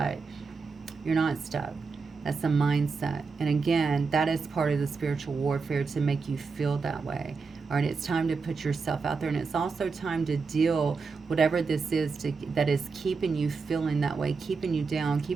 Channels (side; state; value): left; quieter; 4.7 dB